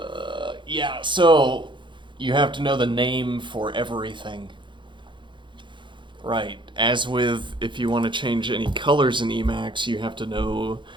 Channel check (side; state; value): left; late; 0.23 ms